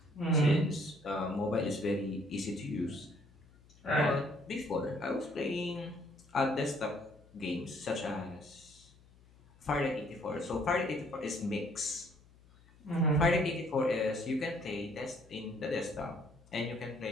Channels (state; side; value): noise; left; hum, 26 dB below the sound